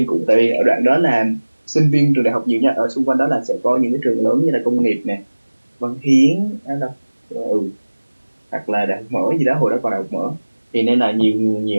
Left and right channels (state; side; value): inverted; both; correlation -1.00